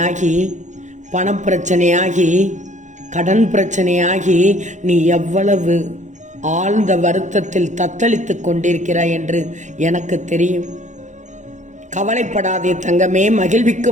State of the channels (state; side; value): late; left; 0.35 ms